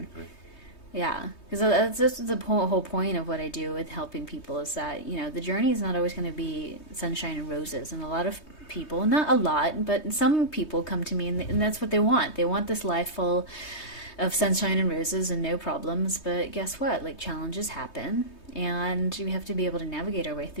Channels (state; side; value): late; right; 3.2 ms